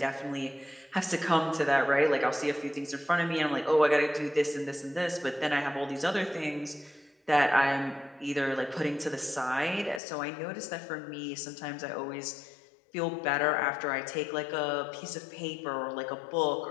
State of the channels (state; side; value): drops out; right; at 10.0 s